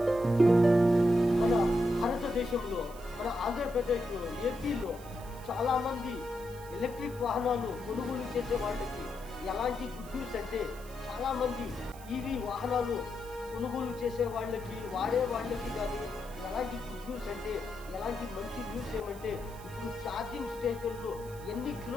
మన భారతదేశంలో మన ఆంధ్రప్రదేశ్లో ఏపీలో చాలామంది ఎలక్ట్రిక్ వాహనాలు కొనుగోలు చేసే వాళ్ళకి ఎలాంటి గుడ్ న్యూస్ అంటే చాలామంది ఈవీ వాహనాలు కొనుగోలు చేసే వాళ్ళకి వాడే వాళ్ళకి కానీ ఎలాంటి గుడ్ న్యూస్ అంటే ఎలాంటి మంచి న్యూస్ ఏమంటే ఇప్పుడు ఛార్జింగ్ స్టేషన్లు ఎన్ని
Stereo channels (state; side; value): noise; right; hiss, 20 dB below the sound